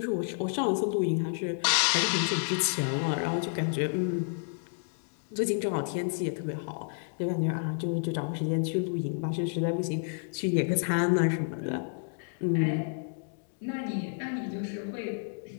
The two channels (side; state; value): right; silent; digital silence